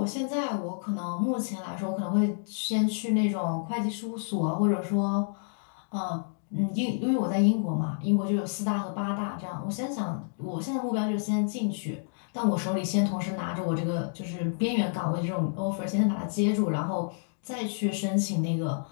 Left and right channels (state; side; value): silent; right; digital silence